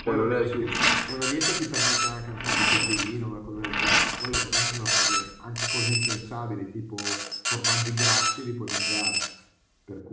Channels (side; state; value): both; identical; correlation 1.00